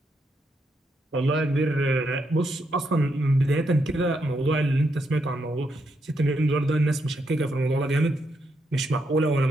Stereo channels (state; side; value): normal; both; correlation 0.80